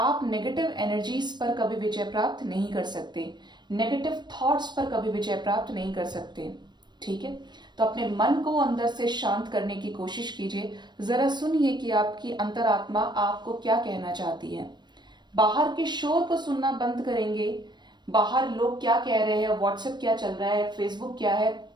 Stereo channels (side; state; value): left; late; 0.21 ms